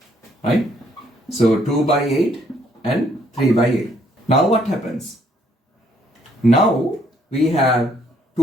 Right. So 2 by 8 and 3 by 8. Now what happens? Now we have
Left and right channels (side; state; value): both; normal; correlation 0.67